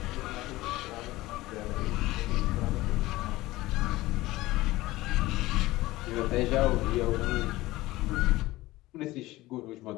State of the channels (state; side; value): quieter; right; 18.3 dB